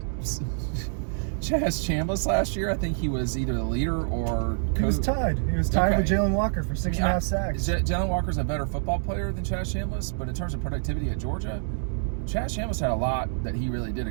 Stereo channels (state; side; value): silent; left; 60 dB below the other